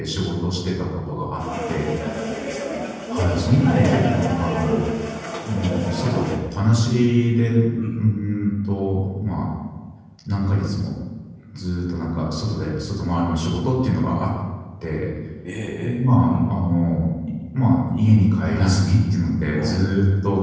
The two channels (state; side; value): identical; both; correlation 1.00